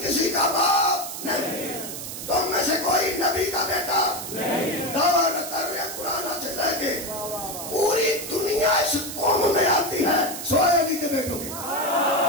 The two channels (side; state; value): right; noise; hiss, 8 dB below the sound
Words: کسی کا باپ نہیں, تم میں سے کوئی نبی کا بیٹا نہیں. دعویٰ کر رہے قرآن سے لے کے پوری دنیا اس قوم میں آتی ہے سوائے علی کے بیٹوں کے.